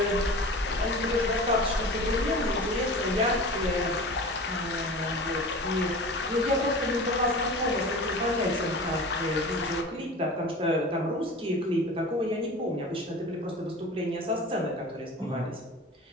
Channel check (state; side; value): normal; both; correlation 0.36